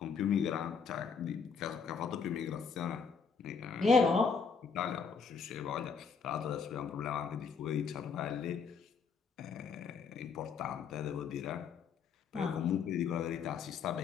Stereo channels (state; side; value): quieter; right; 5.8 dB